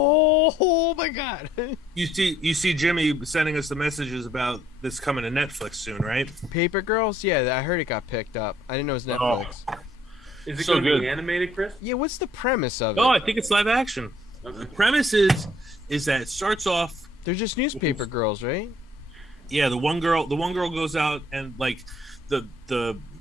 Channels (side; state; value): both; normal; correlation 0.63